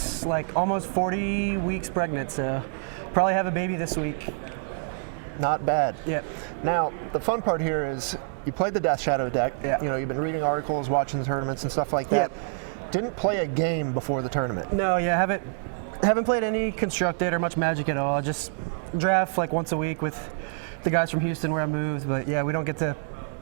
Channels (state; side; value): silent; left; digital silence